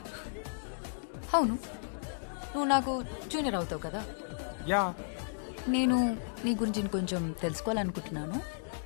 అవును నువ్వు నాకు జూనియర్ అవుతావు కదా. యా, నేను నీ గురించి కొంచెం తెలుసుకోవాలనుకుంటున్నాను.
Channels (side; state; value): right; silent; digital silence